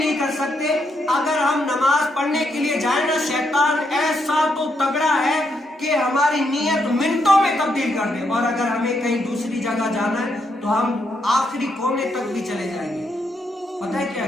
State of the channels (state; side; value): normal; both; correlation 0.78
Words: کر سکتے۔ اگر ہم نماز پڑھنے کے لیے جائیں نا، شیطان ایسا تو تگڑا ہے کہ ہماری نیت منٹوں میں تبدیل کر دے، اور اگر ہمیں کہیں دوسری جگہ جانا ہے تو ہم آخری کونے تک بھی چلے جائیں گے۔ پتہ ہے کیا؟